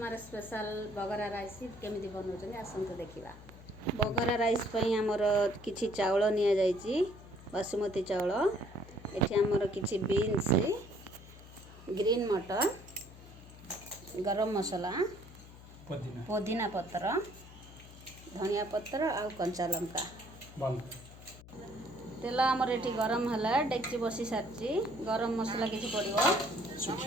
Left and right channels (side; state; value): left; noise; hum, 18 dB below the sound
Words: स्पेशल बगरा राइस केमी बनाऊँ आसतु देखा बगरा राइस आमर किसी चाउल नि बासुमती चाउल एठी आमर किसी बीन्स ग्रीन मटर गरम मसला पुदीना पत्र धनिया पत्र आ कंचा लंका तेल आमर ये गरम है डेक्ची बसी सारी गरम मसला किसी पड़ो